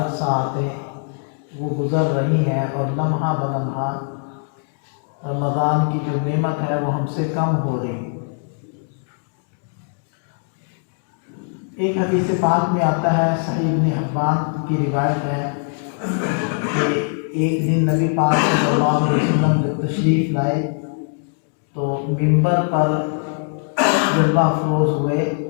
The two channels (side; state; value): right; silent; 57 dB below the other